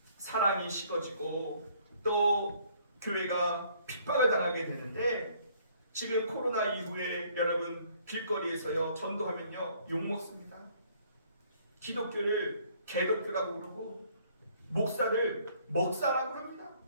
사랑이 식어지고 또 교회가 핍박을 당하게 되는데, 지금 코로나 이후에 여러분 길거리에서요 전도하면요 욕먹습니다. 기독교를 개독교라고 그러고, 목사를 먹사라고 합니다.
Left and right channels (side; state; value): both; inverted; correlation -0.62